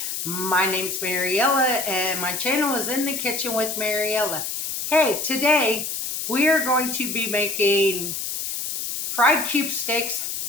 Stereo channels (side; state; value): left; noise; hiss, 4 dB below the sound